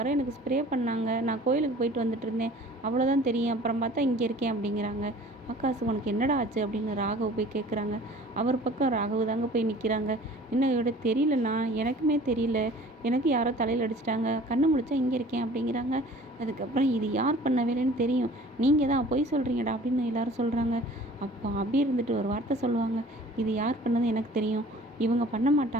எனக்கு ஸ்ப்ரே பண்ணாங்க, நான் கோயிலுக்கு போயிட்டு வந்துட்டு இருந்தேன், அவ்வளோதான் தெரியும், அப்புறம் பார்த்தா இங்கே இருக்கேன் அப்படிங்கிறாங்க. ஆகாஷ் உனக்கு என்னடா ஆச்சு அப்படின்னு ராகவ் போய் கேட்குறாங்க. அவர் பக்கம் ராகவ் தாங்க போய் நிற்கிறாங்க. என்னையோட தெரியலண்ணா, எனக்குமே தெரியல, எனக்கு யாரோ தலையில் அடிச்சிட்டாங்க, கண்ணு முழிச்சா இங்கே இருக்கேன் அப்படிங்கிறாங்க. அதுக்கப்புறம் இது யார் பண்ண வேலைன்னு தெரியும், நீங்கள் தான் பொய் சொல்கிறீங்கடா அப்படின்னு எல்லாரும் சொல்கிறாங்க. அப்போ அபி இருந்துட்டு ஒரு வார்த்தை சொல்லுவாங்க, இது யார் பண்ணது எனக்கு தெரியும், இவங்க பண்ண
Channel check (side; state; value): both; normal; correlation 0.48